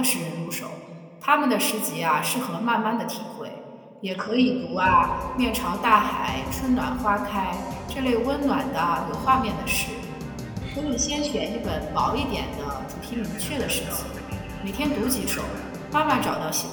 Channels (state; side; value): identical; both; correlation 1.00